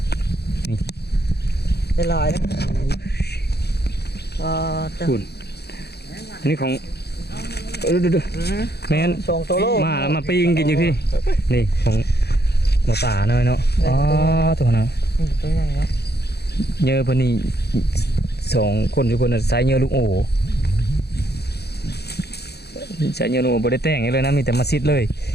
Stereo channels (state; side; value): late; right; 0.48 ms